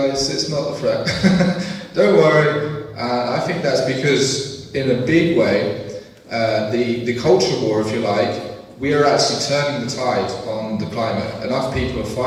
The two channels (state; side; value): identical; both; correlation 1.00